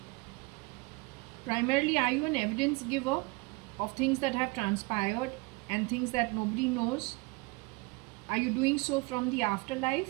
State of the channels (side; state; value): left; quieter; 26.7 dB